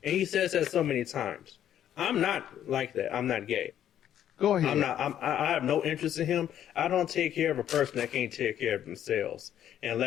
And he says that so many times. I'm not like that. I'm not gay. Go ahead. I'm not. I have no interest in him. I don't take care of a person that can't take care of themselves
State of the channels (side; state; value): right; quieter; 10.6 dB